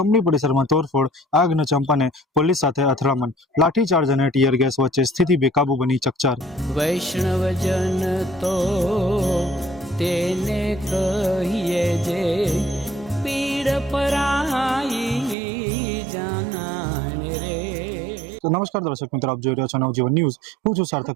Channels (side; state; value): left; drops out; at 15.4 s